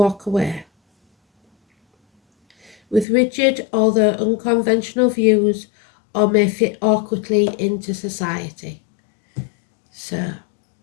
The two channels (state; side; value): drops out; right; at 3.1 s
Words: away. With rigid, although unconventional views, or may fit awkwardly into society. So,